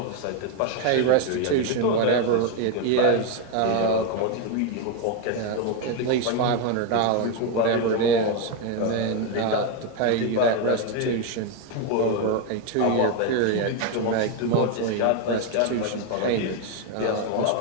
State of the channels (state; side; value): different; both; correlation 0.01